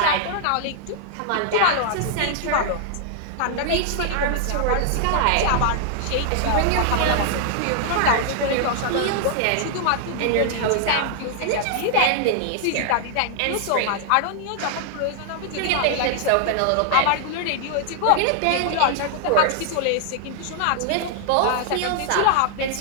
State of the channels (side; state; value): both; different; correlation 0.00